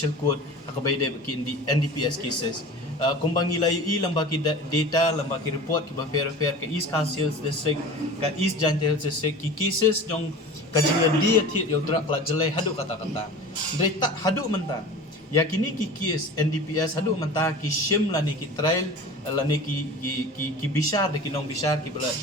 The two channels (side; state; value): both; normal; correlation 0.37